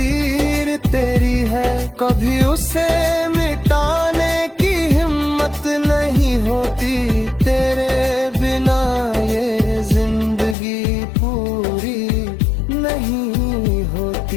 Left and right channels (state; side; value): drops out; right; at 10.6 s